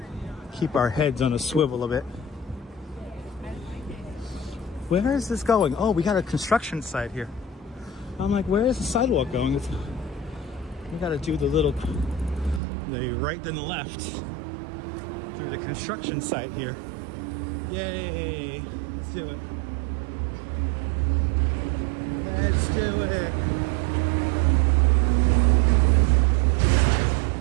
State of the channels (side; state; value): left; drops out; at 12.6 s